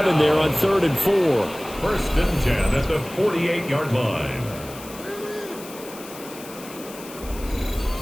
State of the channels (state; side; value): noise; left; hiss, 16 dB below the sound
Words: there on 3rd and 4. 1st and 10 at the 48-yard line.